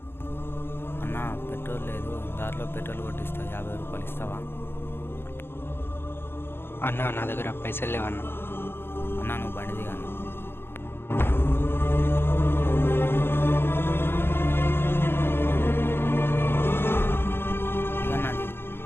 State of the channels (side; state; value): right; late; 0.11 ms